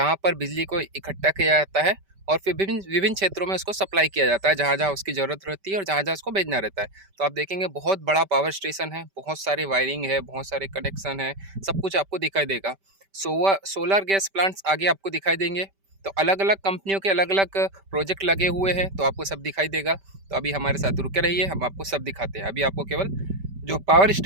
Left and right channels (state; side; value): late; left; 5.1 ms